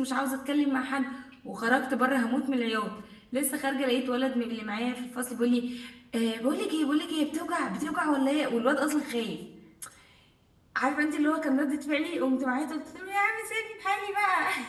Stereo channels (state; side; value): identical; both; correlation 1.00